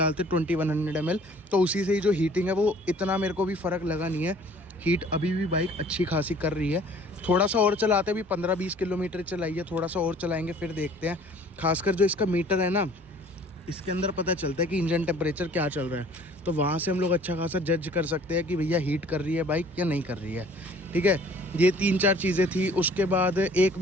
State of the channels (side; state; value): both; normal; correlation 0.53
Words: 2100 ml। तो उसी से ही जो हीटिंग है वो इतना मेरे को भी फ़र्क लगा नहीं है। हीट अभी भी बाइक अच्छी खासी कर रही है। थोड़ा सा और चलाते, भी 15-20 किलोमीटर चलाइए, थोड़ा सा और चलाएंगे फिर देखते हैं। खासकर जो इसका मीटर है ना, इसके अंदर पता चलता है कि इंजन टेम्परेचर क्या चल रहा है, तो वहाँ से हम लोग अच्छा खासा जज कर सकते हैं कि भैया हीट कर रही है बाइक या नहीं कर रही है, ठीक है। ये 3-4 चीज़ें थी। उसके बाद एक